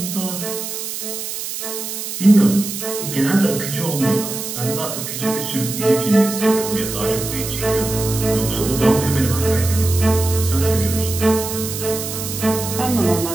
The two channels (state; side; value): noise; right; hiss, 6 dB below the sound